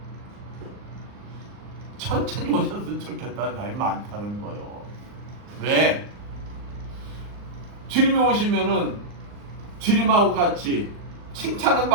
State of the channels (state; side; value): late; left; 39 ms